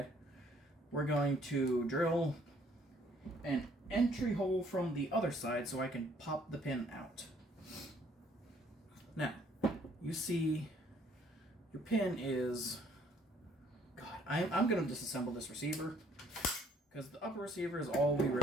We're going to drill an entry hole from the other side so I can pop the pin out. Now, you see your pin is... God, I'm going to disassemble this receiver because the upper receiver is all we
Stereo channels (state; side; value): normal; both; correlation 0.63